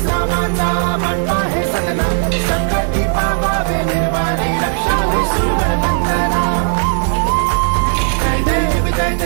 समाचा बनता है प्रार्थना संकटी पावावे निर्वाणी रक्षावे सुवर वंदना जय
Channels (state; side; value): silent; left; 67 dB below the other